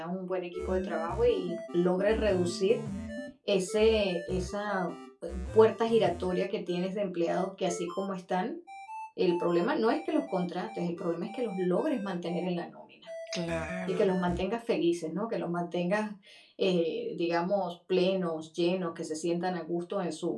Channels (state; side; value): identical; both; correlation 1.00